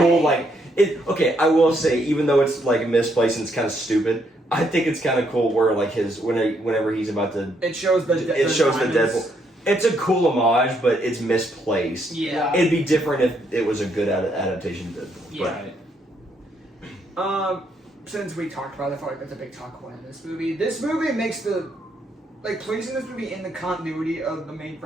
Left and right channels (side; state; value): both; normal; correlation 0.74